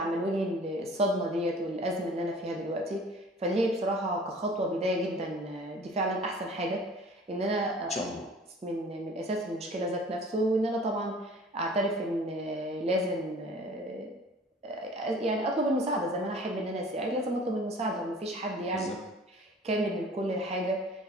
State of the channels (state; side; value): normal; both; correlation 0.47